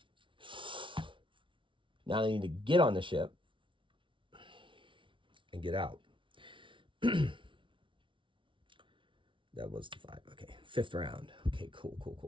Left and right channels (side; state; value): left; late; 0.25 ms